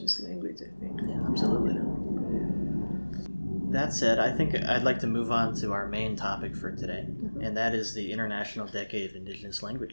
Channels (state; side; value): inverted; both; correlation -1.00